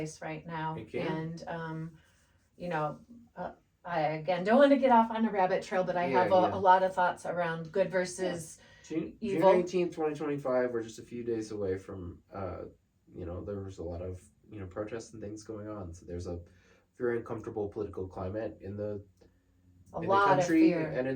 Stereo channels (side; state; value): both; identical; correlation 1.00